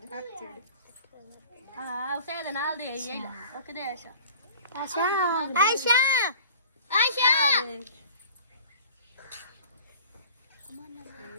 ਆਪ ਚੜੇ ਹਾਂ ਉਸੇ ਦੇ ਨਾਲ ਦੇ ਆਈ ਉਹ ਕਿਦੇ ਆਇਸ਼ਾ ਆਇਸ਼ਾ ਆਇਸ਼ਾ ਆਇਸ਼ਾ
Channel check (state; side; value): inverted; both; correlation -0.45